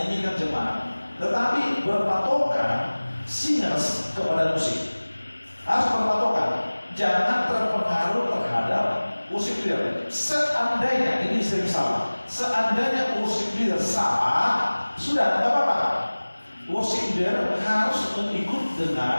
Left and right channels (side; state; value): both; inverted; correlation -1.00